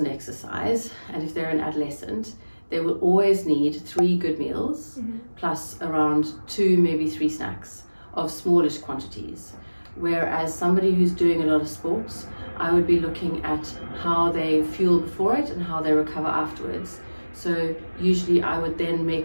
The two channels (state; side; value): inverted; both; correlation -1.00